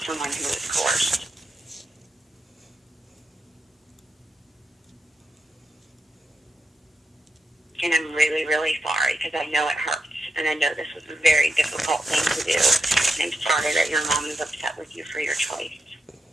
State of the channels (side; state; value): both; normal; correlation 0.86